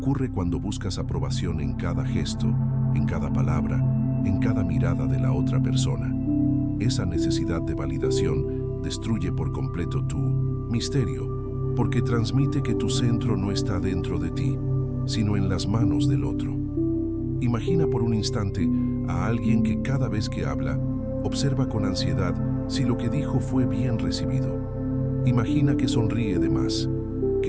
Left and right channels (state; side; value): identical; both; correlation 1.00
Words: cuando buscas aprobación en cada gesto, en cada palabra, en cada mirada de la otra persona. Esa necesidad de validación destruye por completo tu misterio, porque transmite que tu centro no está dentro de ti, sino en las manos del otro. Imagina por un instante a alguien que cada vez que habla, observa con ansiedad si lo que dijo fue bien recibido. Imagina que sonríe de más,